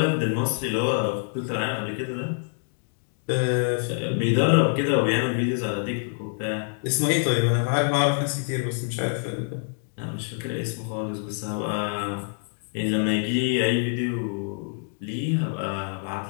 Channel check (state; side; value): silent; right; 61 dB below the other